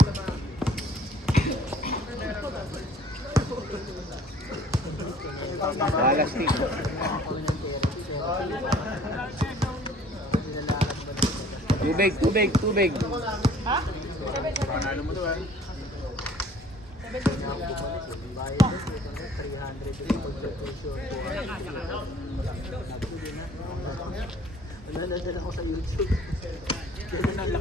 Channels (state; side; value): normal; both; correlation 0.53